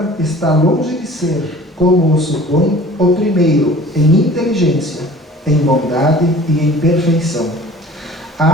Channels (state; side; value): normal; both; correlation 0.46